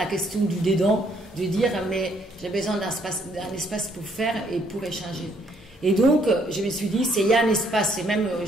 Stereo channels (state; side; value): normal; both; correlation 0.68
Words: question du dedans, de dire mais j'ai besoin d'un espace pour faire et pour échanger. Et donc, je me suis dit, s'il y a un espace, et même